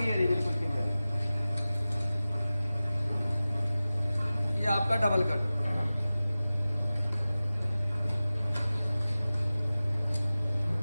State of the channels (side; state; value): both; inverted; correlation -0.96